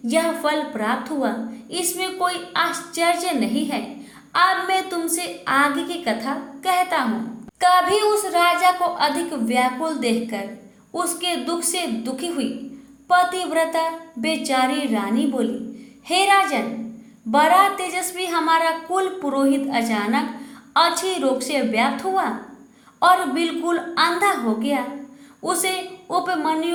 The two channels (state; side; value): identical; both; correlation 1.00